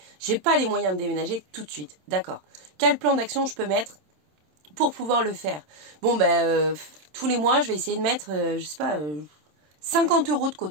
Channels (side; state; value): left; late; 27 ms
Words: j'ai pas les moyens de déménager tout de suite. D'accord. Quel plan d'action je peux mettre pour pouvoir le faire? Bon ben, tous les mois, je vais essayer de mettre, je sais pas, 50 € de